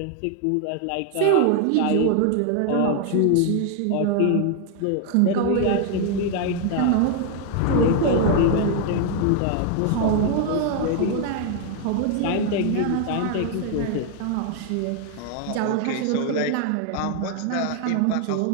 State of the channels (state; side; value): different; both; correlation 0.00